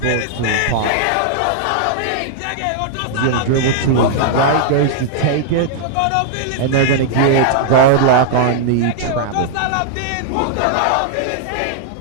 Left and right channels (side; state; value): both; different; correlation -0.01